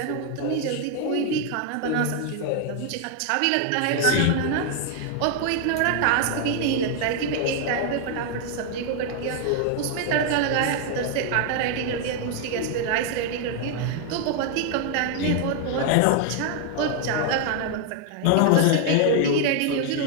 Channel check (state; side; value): different; both; correlation 0.00